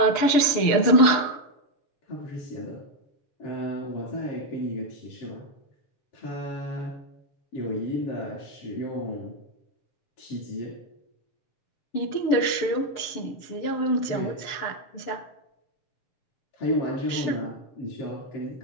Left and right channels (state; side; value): late; right; 6.7 ms